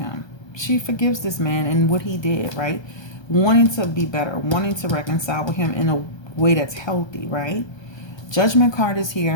She forgives this man and what he did, right? Wanting to be better, wanting to reconcile with him in a way that's healthy, right? Judgment card is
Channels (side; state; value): right; late; 1.2 ms